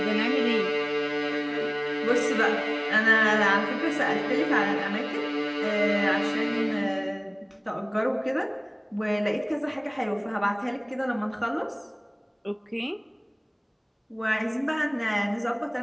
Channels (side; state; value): both; identical; correlation 1.00